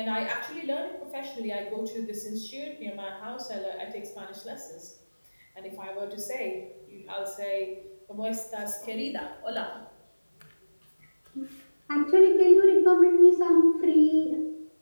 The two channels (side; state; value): both; inverted; correlation -1.00